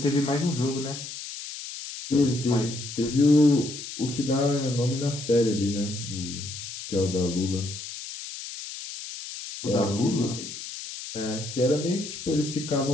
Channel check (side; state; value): left; noise; hiss, 10 dB below the sound